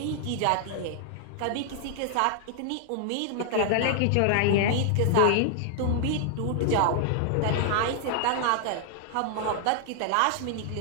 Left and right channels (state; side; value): different; both; correlation -0.01